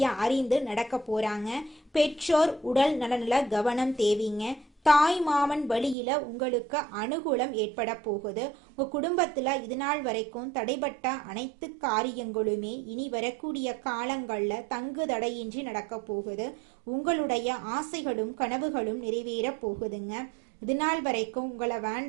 அறிந்து நடக்க போறாங்க. பெற்றோர் உடல் நலனில கவனம் தேவைங்க. தாய் மாமன் வழியில உங்களுக்கு அனுகூலம் ஏற்பட போகுது. உங்க குடும்பத்துல இது நாள் வரைக்கும் தடைபட்ட அனைத்து காரியங்களுமே இனி வரக்கூடிய காலங்கள்ல தங்கு தடையின்றி நடக்க போகுது. உங்களுடைய ஆசைகளும் கனவுகளும் நிறைவேற போகுதுங்க. இது நாள் வரைக்கும் உங்களை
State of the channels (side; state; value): left; drops out; at 6.0 s